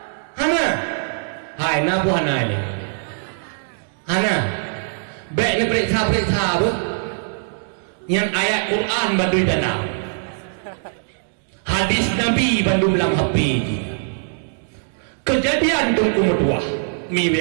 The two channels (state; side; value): silent; left; digital silence